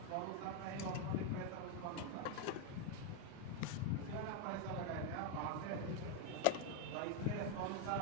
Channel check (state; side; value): different; both; correlation 0.01